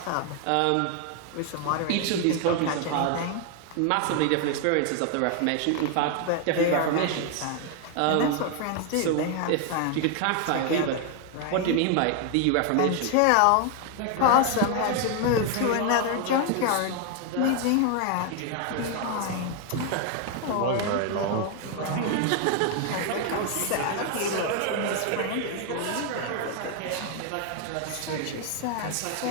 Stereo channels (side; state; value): both; different; correlation 0.00